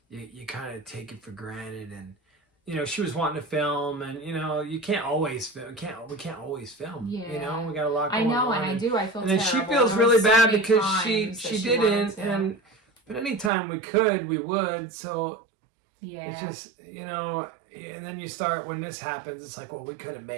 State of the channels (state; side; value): drops out; left; at 13.5 s